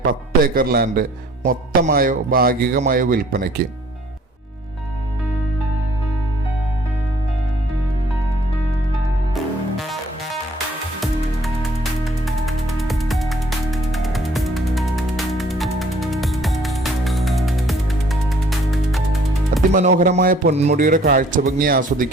10 ഏക്കർ ലാൻഡ് മൊത്തമായോ ഭാഗികമായോ വിൽപ്പനയ്ക്ക്. അതിമനോഹരമായ പൊന്മുടിയുടെ കാഴ്ചഭംഗി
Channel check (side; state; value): both; normal; correlation 0.58